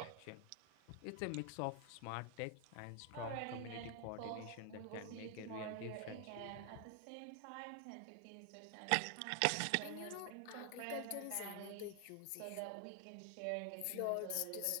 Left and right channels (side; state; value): both; different; correlation 0.00